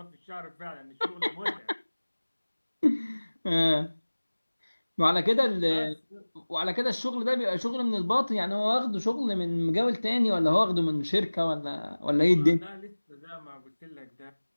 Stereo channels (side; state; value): both; inverted; correlation -1.00